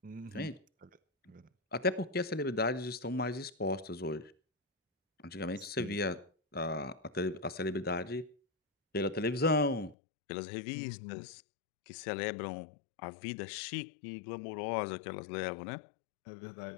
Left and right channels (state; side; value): drops out; right; at 10.0 s